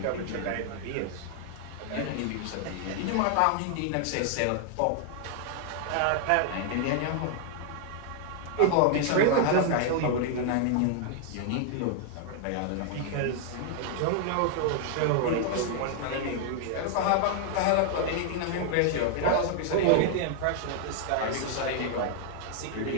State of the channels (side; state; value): both; different; correlation 0.00